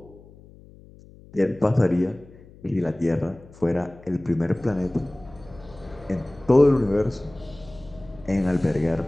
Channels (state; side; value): noise; left; hum, 22 dB below the sound